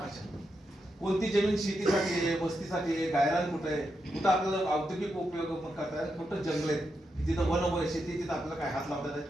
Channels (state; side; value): normal; both; correlation 0.85